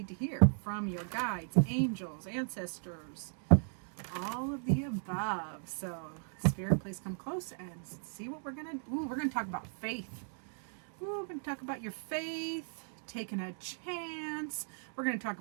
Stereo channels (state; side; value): silent; left; digital silence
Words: to hear from your guides, angels, ancestors, all of the above. So, Spirit, please come close and see what we're going to. We're going to talk about faith. We're going to talk about your faith, taking a chance. We're going to talk